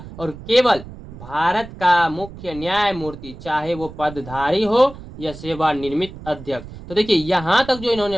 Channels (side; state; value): right; noise; rumble, 15 dB below the sound